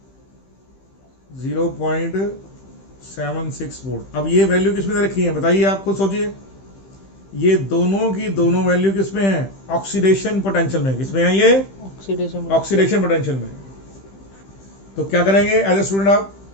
0.76 वोल्ट। अब ये वैल्यू किस में दे रखी है बताइए, आप खुद सोचिए। ये दोनों की दोनों वैल्यू किस में है? ऑक्सीडेशन पोटेंशियल में। किस में है ये? ऑक्सीडेशन पोटेंशियल में। तो क्या करेंगे एज ए स्टूडेंट?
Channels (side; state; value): right; late; 15 ms